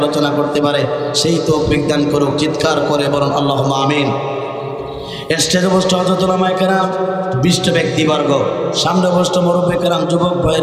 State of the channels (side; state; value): both; identical; correlation 1.00